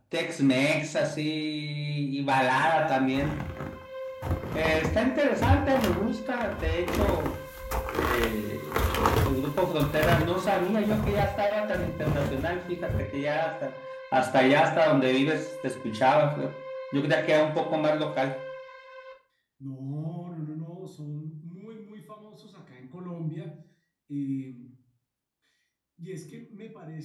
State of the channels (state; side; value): identical; both; correlation 1.00